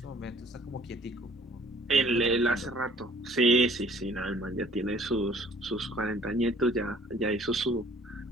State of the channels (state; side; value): normal; both; correlation 0.55